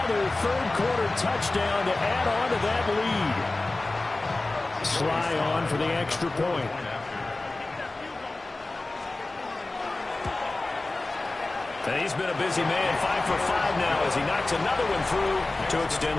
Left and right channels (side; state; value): right; quieter; 3.0 dB